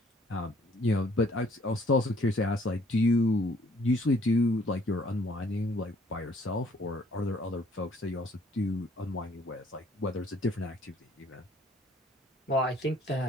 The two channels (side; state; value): both; normal; correlation 0.60